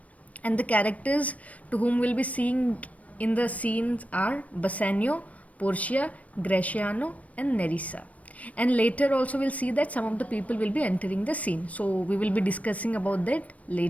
and the characters to whom we'll be seeing in the scenes are Bassanio, Portia, Graciano, and Nerissa. And later also we'll see that some of the people will be entering the scene. So we will be discussing about that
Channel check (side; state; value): right; late; 0.068 ms